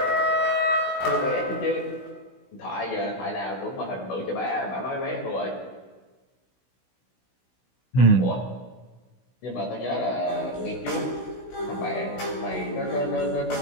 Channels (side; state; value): right; late; 16 ms